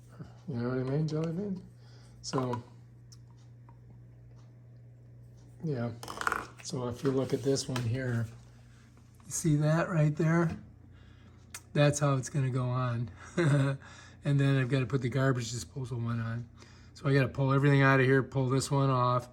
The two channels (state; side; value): identical; both; correlation 1.00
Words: You know what I mean, Jelly Bean? So, yeah. So if you look at this one here, you see that right there? That's how it's going to go on. And then I've got to put the garbage disposal one on. So I got to pull everything out of here, pull this one off,